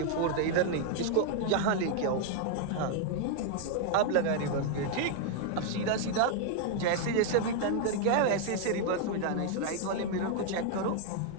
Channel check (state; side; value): different; both; correlation 0.00